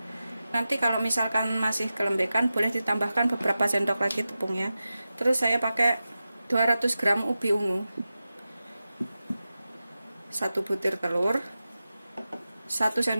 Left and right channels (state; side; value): inverted; both; correlation -0.93